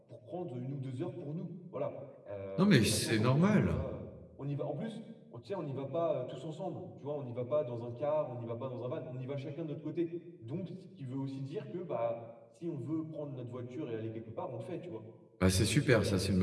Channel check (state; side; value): identical; both; correlation 1.00